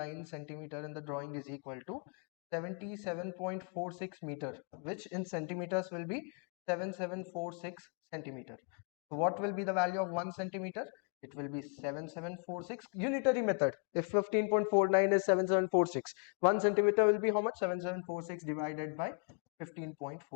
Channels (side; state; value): right; quieter; 38.1 dB